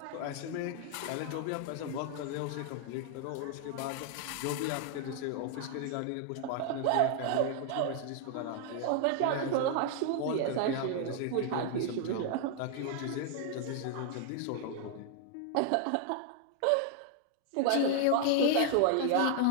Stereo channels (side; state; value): both; different; correlation 0.00